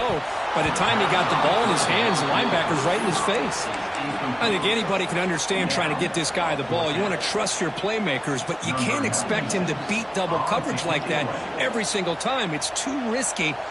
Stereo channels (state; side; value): identical; both; correlation 1.00